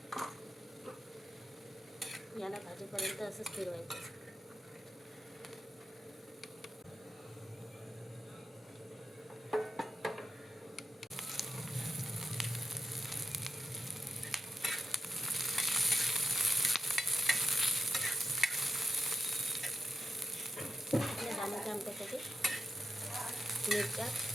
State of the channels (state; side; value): normal; both; correlation 0.89